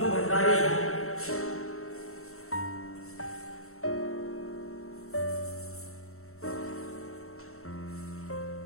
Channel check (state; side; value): late; right; 0.63 ms